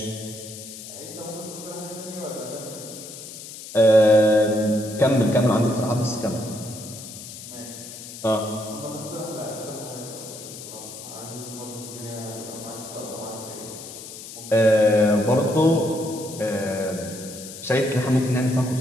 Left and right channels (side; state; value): left; noise; hiss, 13 dB below the sound